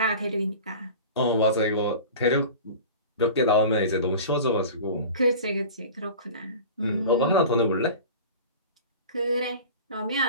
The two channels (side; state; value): both; inverted; correlation -0.36